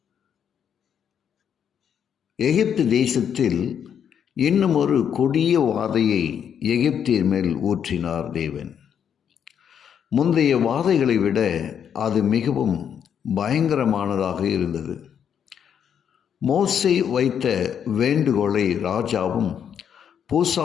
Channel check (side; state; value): right; quieter; 8.3 dB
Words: எகிப்து தேசத்தில் இன்னும் ஒரு கொடிய வாதையை எகிப்தியர் மேல் ஊற்றினார் தேவன். முந்தைய வாதைகளை விட அது மிகவும் பயங்கரமானதாக இருந்தது. மோசே வைத்த வேண்டுகோளை ராஜாவும்